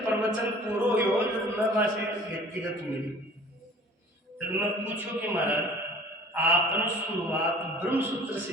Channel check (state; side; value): normal; both; correlation 0.48